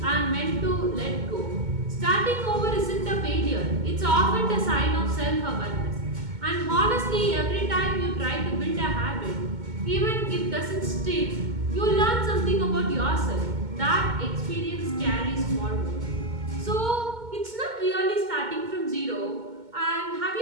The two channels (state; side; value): late; left; 2.2 ms